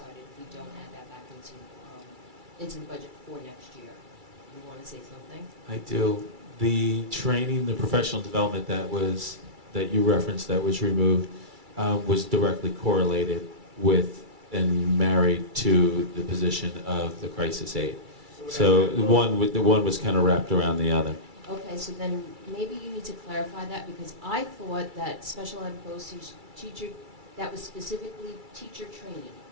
if we don't add that back into the budget for next year. You want to say something? I do. The training, the professional development that you referenced that was removed was directly correlated with and married to the position of the crisis aide. So the one was kind of wrapped around the other. Okay, so then maybe you need to clarify that, because I thought that special ed BOCES teacher, that was specifically teacher training,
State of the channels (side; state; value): left; late; 2.3 ms